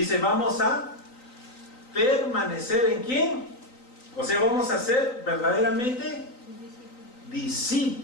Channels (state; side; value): late; right; 3.9 ms